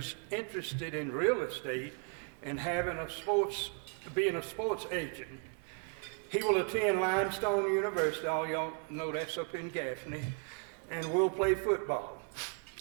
interested in real estate and being a sports agent. He will attend Limestone University, all y'all know that's up in Gaffney, and will play football.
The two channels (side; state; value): left; quieter; 38.2 dB